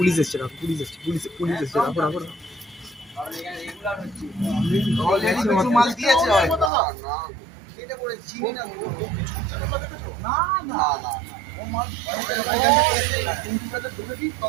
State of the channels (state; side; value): drops out; left; at 6.7 s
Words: এসছে, রাখো, police এসছে, পুলিশ এসছে, রাখো রাখো। মাল দিয়েছে